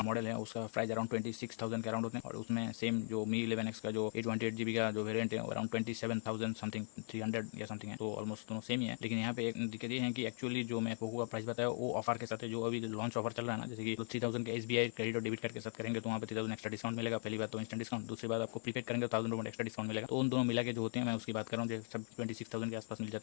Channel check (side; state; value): right; silent; 52 dB below the other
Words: मॉडल है, उसका प्राइस अराउंड 26,000 के अराउंड होते हैं, और उसमें सेम जो Mi 11X का जो 128GB का जो वेरियंट है वो अराउंड 27,000 समथिंग 300 या समथिंग है, तो ऑलमोस्ट दोनों सेम ही है। लेकिन यहाँ पे एक दिक्कत ये है कि एक्चुअली जो मैं पोको का प्राइस बताया वो ऑफर के साथ है, जो अभी लॉन्च ऑफर चल रहा है ना, जैसे कि 3000 के SBI क्रेडिट और डेबिट कार्ड के साथ करेंगे तो वहाँ पे 3000 एक्स्ट्रा डिस्काउंट मिलेगा। पहली बात तो इंस्टेंट डिस्काउंट, दूसरी बात आपको प्रीपेड करेंगे तो 1000 रुपये एक्स्ट्रा डिस्काउंट मिलेगा। तो उन दोनों मिला के जो होते हैं मैं उसकी बात कर रहा हूँ, जो सब 26,000 के आसपास मिल जाता